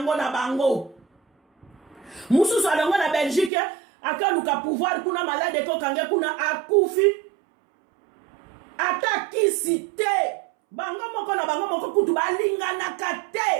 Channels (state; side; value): drops out; left; at 3.5 s